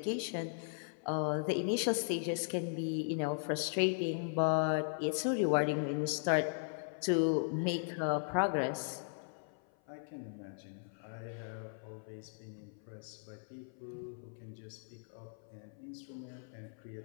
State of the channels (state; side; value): silent; right; 53 dB below the other